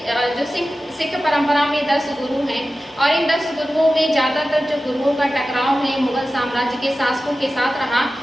जो सिख परंपरा में 10 गुरु हैं और इन 10 गुरुओं में ज्यादातर जो गुरुओं का टकराव है मुगल साम्राज्य के शासकों के साथ रहा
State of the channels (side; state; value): both; normal; correlation 0.94